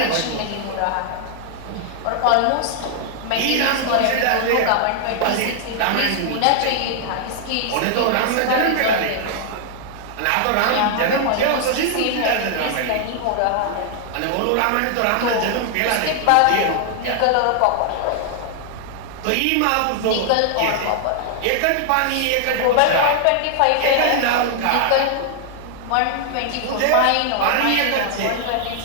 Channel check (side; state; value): both; different; correlation 0.00